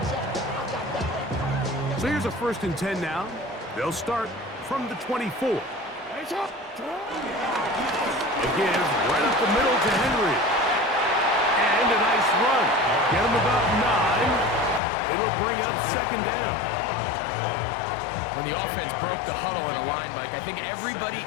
So here's a 1st and 10 now. They'll start from the 24. A give right up the middle to Henry. And a nice run. Get him about 9. It'll bring up 2nd down. When the offense broke the huddle in a line, Mike, I think everybody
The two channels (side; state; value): right; drops out; at 14.8 s